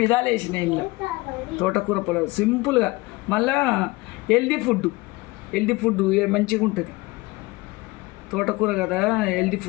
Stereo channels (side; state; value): right; quieter; 22.3 dB